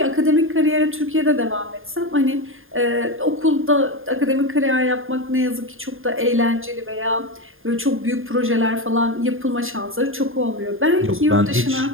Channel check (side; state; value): left; late; 0.59 ms